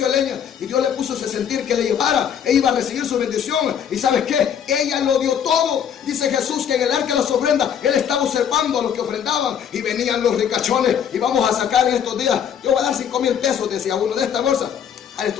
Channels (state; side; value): quieter; right; 8.5 dB